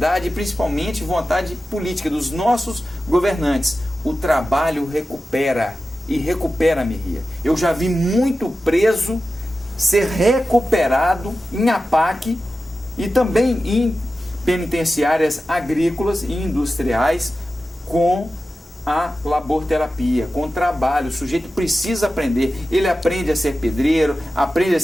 principalmente vontade política dos nossos governantes. O trabalho recupera, e recupera, Merria. Eu já vi muito preso ser recuperado em APAC e também em penitenciárias agrícolas e industriais com a laborterapia, com trabalho. O sujeito precisa aprender. Ele aprende a ser pedreiro, aprende a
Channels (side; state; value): both; normal; correlation 0.93